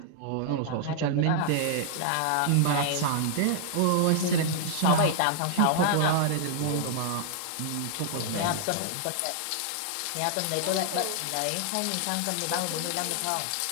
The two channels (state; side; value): different; both; correlation 0.00